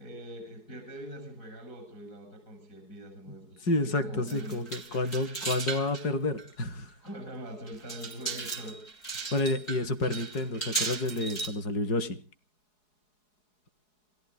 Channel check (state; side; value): late; right; 4.7 ms